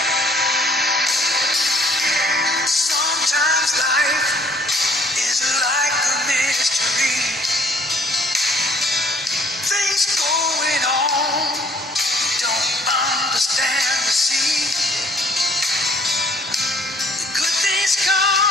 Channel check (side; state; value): both; normal; correlation 0.60